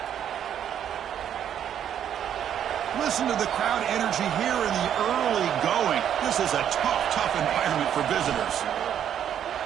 Listen to the crowd energy here in the early going. This is a tough environment for visitors.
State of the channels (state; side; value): quieter; left; 9.6 dB